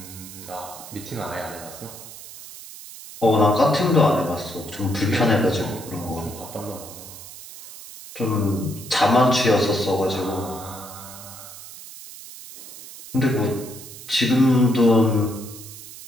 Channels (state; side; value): noise; right; hiss, 15 dB below the sound